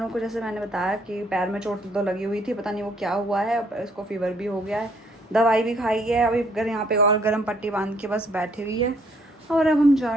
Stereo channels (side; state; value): both; normal; correlation 0.66